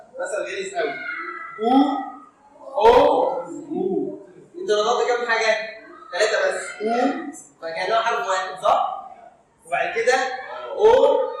او انت نطقت كام حاجه؟ 3 بس. او فكانها حرف واحد صح؟ وبعد كده او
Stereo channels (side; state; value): both; identical; correlation 1.00